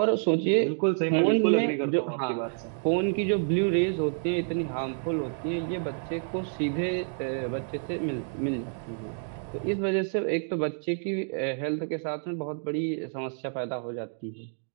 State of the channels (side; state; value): left; silent; digital silence